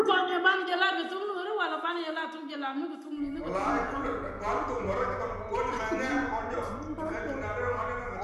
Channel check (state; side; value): identical; both; correlation 1.00